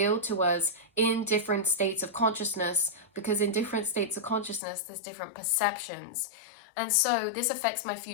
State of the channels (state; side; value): drops out; right; at 4.6 s